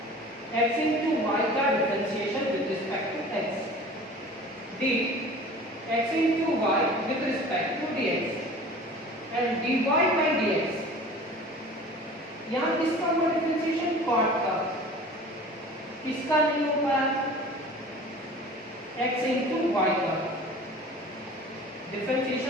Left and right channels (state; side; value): normal; both; correlation 0.42